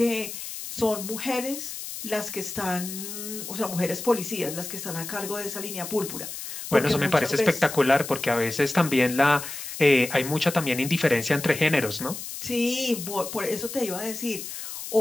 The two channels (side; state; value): left; noise; hiss, 8 dB below the sound